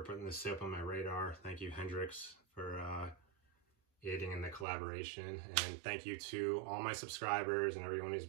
putting this soap on my radar. Thank you, Hendrix, for aiding in the collaboration. And thank you to all my subscribers and everyone who's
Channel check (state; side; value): drops out; left; at 4.7 s